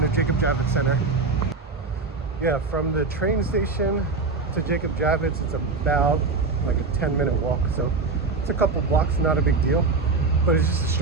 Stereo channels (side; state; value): left; quieter; 4.0 dB